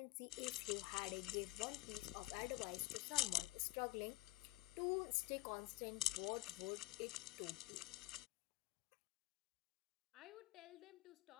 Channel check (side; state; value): right; quieter; 19.0 dB